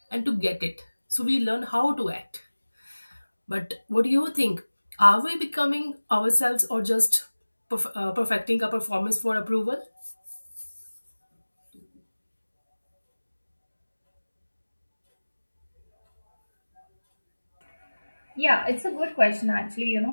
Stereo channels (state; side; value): inverted; both; correlation -1.00